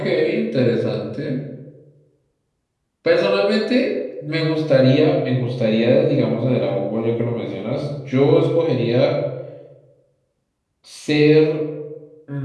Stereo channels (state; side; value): identical; both; correlation 1.00